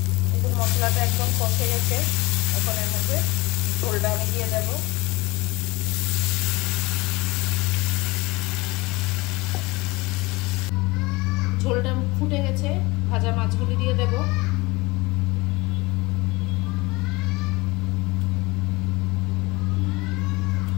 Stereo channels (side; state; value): right; quieter; 23.1 dB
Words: এখন মশলাটা একদম কষে গেছে, এখন এর মধ্যে ঝোলটা আমি দিয়ে দেব। ঝোলটা ফুটে গেছে, ভাজা মাছগুলি দিয়ে দেব।